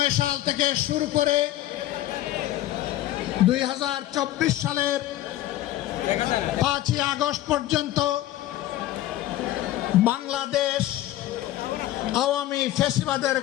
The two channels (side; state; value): right; quieter; 14.3 dB